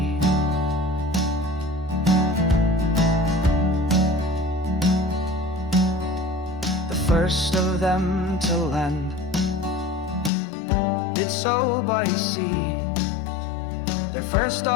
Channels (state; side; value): drops out; right; at 10.3 s